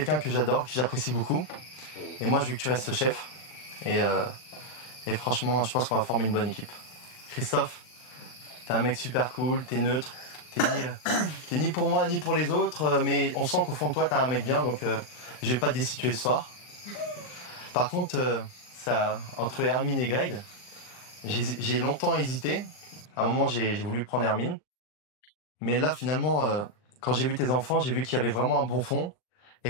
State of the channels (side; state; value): right; late; 39 ms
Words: que j'adore, que j'apprécie beaucoup. Et moi, je veux que tu restes chef. Et franchement, je pense qu'on va former une bonne équipe. Christophe, t'es un mec super cool, t'es neutre, t'es ni pour moi ni pour les autres, mais on sent qu'au fond de toi, t'es un mec bien, donc je vais pas te destituer ce soir. Par contre, entre Hermine et Greg, j'ai longtemps hésité, À un moment, j'ai voulu prendre Hermine. Mais là, finalement, quand j'ai vu tes enfants, j'ai vu qu'il y avait vraiment un bon fond. Et